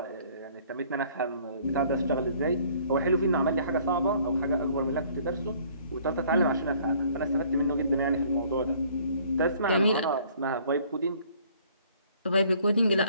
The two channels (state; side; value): inverted; both; correlation -0.58